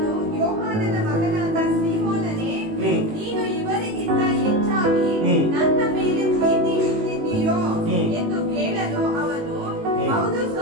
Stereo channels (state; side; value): late; left; 19 ms